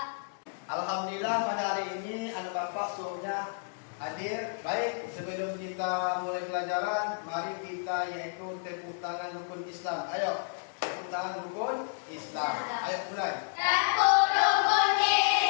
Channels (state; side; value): silent; right; digital silence